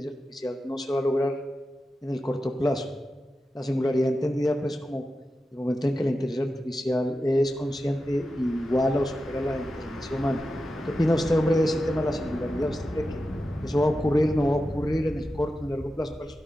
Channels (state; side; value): normal; both; correlation 0.91